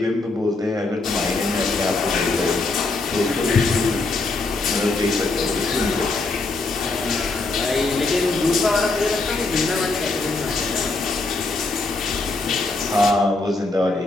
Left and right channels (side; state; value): right; quieter; 3.4 dB